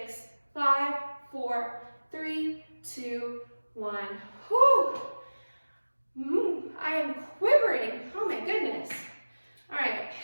5, 4, 3, 2, 1. Whew. I am quivering. Oh my goodness. All right.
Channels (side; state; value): both; inverted; correlation -1.00